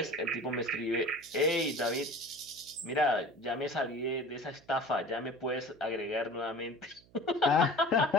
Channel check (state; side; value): noise; right; hum, 28 dB below the sound